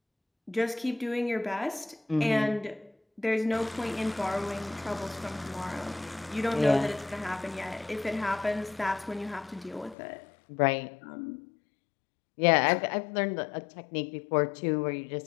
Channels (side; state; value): right; drops out; at 10.0 s